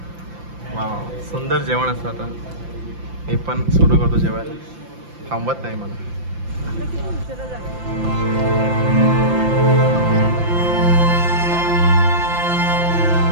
वाव सुंदर जेवण असतं. आता मी पण सुरू करतो जेवायला. थांबत नाही मला.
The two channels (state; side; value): late; left; 5.8 ms